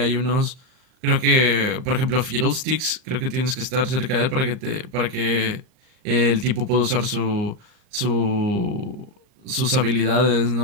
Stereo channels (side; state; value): left; late; 39 ms